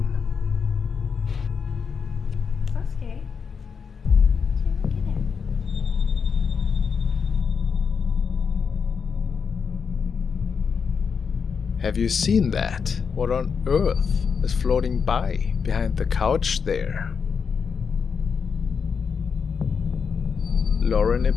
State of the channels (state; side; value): quieter; right; 6.0 dB